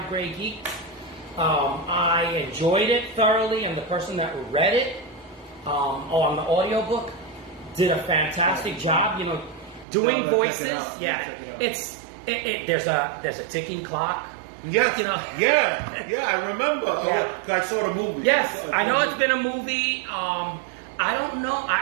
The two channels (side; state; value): left; drops out; at 9.9 s